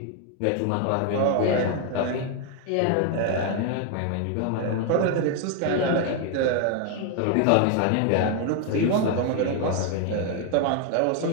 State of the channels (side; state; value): both; different; correlation 0.01